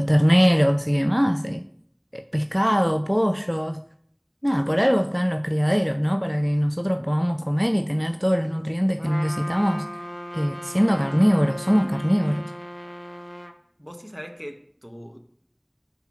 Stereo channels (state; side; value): identical; both; correlation 1.00